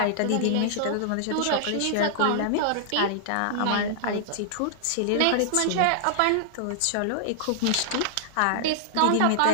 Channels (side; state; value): both; different; correlation -0.01